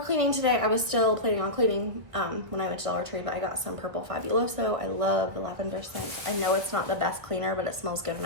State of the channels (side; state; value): left; late; 1.7 ms